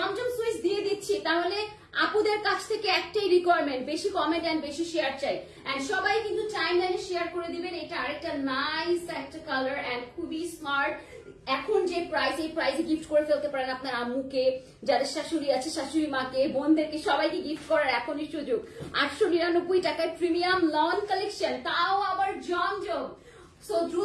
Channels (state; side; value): identical; both; correlation 1.00